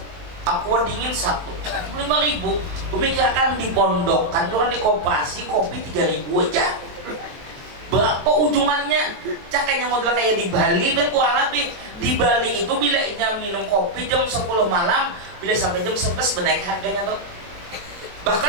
Aqua dingin 1, 5.000. Memikirkan di pondok kan orang di koperasi kopi 3.000 aja. Berapa ujungannya? Cakanya model kayak di Bali dan kurang lebih. Di Bali itu bila minum kopi jam 10 malam, bila sampai jam 11 menaik harganya tuh.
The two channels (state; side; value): late; left; 23 ms